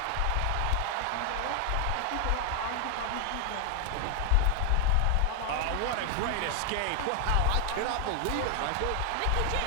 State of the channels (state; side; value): different; both; correlation 0.00